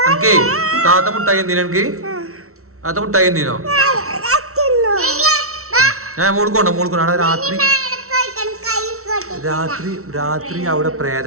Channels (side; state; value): left; late; 0.63 ms